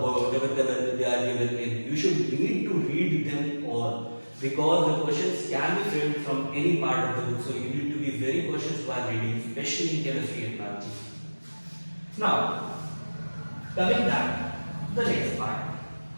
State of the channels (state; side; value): inverted; both; correlation -1.00